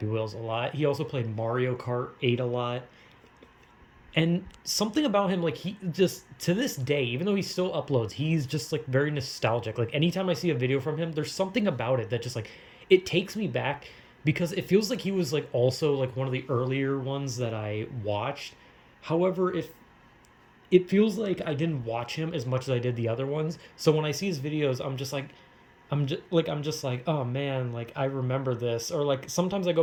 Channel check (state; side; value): identical; both; correlation 1.00